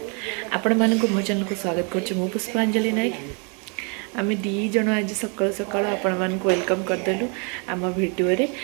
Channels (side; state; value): left; quieter; 35.6 dB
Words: आपण मानक मो चैनल को स्वागत करछु मो पुष्पांजलिनायक आम दी जन आज सकाल सकाल आपण मानक वेलकम करदेलु आम वीडियो रे।